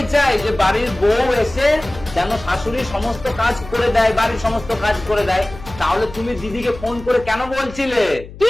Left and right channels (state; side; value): noise; left; hum, 16 dB below the sound